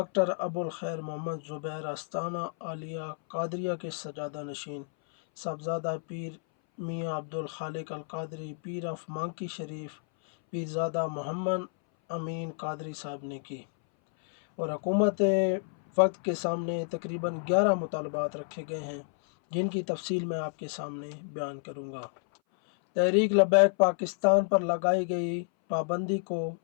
अबुल खैर मोहम्मद ज़ुबैर आस्ताना आलिया कादरिया के सजादा नशीन साहबजादा पीर मियाँ अब्दुल खालिक अल कादरी, पीर ऑफ मांकी शरीफ पीरज़ादा मोहम्मद अमीन कादरी साहब ने की और हुकूमत वक्त के सामने तकरीबन 11 मुतालबात रखे गए हैं जिनकी तफसील मैं आपके सामने बयान करूँगा। तहरीक लबैक पाकिस्तान पर लगाई गई पाबंदी को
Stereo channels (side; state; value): right; silent; 58 dB below the other